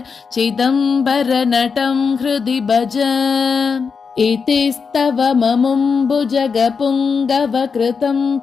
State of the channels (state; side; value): quieter; right; 5.5 dB